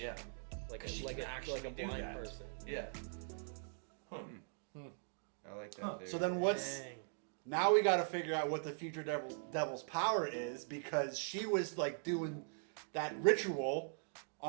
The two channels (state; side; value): silent; left; digital silence